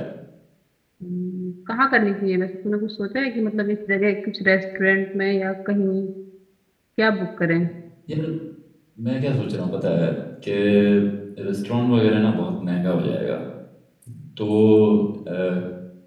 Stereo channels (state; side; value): identical; both; correlation 1.00